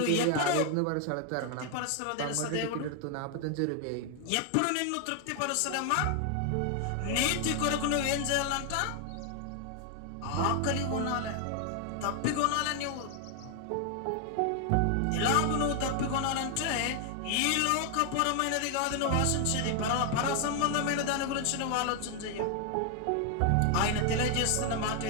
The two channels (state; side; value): different; both; correlation 0.00